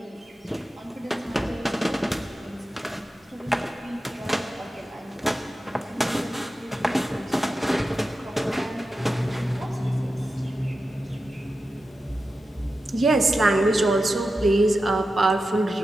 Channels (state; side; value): normal; both; correlation 0.91